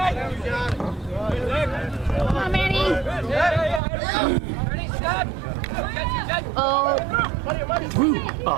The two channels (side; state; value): left; drops out; at 3.8 s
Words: Come on, Manny. Ready, stop. Oh.